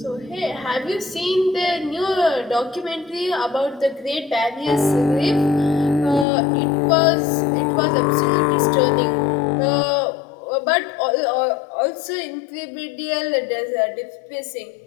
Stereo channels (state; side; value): drops out; right; at 6.2 s